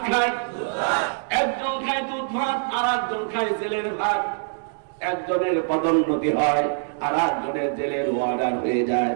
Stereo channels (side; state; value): left; silent; digital silence